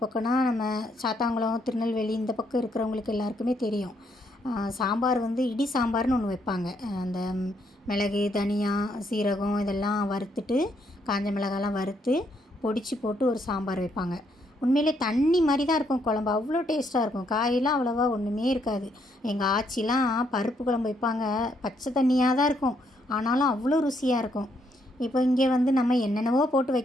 பக்கம்னா நம்ம சாத்தாங்குளம், திருநெல்வேலி இந்த பக்கம் இருக்கிறவங்களுக்கு எல்லாருக்குமே தெரியும். சாம்பார் இடி சாம்பார்னு ஒன்று வைப்பாங்க. அந்த மிளகு, தனியா, சீரகம் இதெல்லாம் வறுத்துட்டு, காஞ்ச மிளகாலாம் வறுத்து பொடிச்சு போட்டு ஒரு சாம்பார் வைப்பாங்க. உண்மையிலே தண்ணி மாதிரி தான் இருக்கும் குழம்பு. அவ்வளோ டேஸ்ட்டாக இருக்கும். காயெல்லாம் அவ்வளோவா ஒன்றுமே இருக்காது. எங்கள் ஆச்சிலாம் பருப்பு குழம்பு வைப்பாங்க. பச்சை தண்ணியாக தான் இருக்கும், ஆனாலும் அவ்வளோ ருசியாக இருக்கும். இப்போ இங்கே நம்ம என்னென்னவோ போட்டு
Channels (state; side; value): normal; both; correlation 0.74